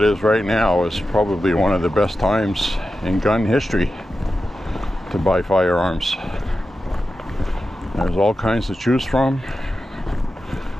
right now is probably one of the best times in gun history to buy firearms. There's all kinds to choose from.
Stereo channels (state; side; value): normal; both; correlation 0.92